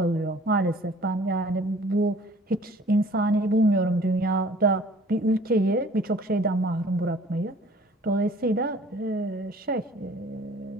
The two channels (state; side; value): normal; both; correlation 0.51